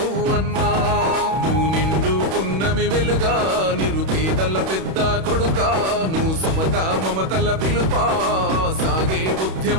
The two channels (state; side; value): late; left; 31 ms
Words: నువ్వు నిండు పున్నమి వెలుగా నిరుపేదల పెద్ద కొడుకా, నువ్వు సమత మమతల పిలుపా సాగే